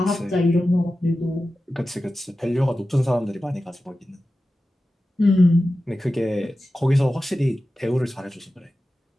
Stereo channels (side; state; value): both; normal; correlation 0.94